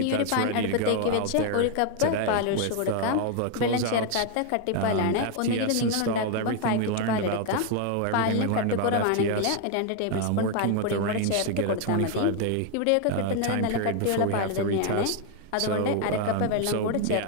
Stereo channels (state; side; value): different; both; correlation 0.01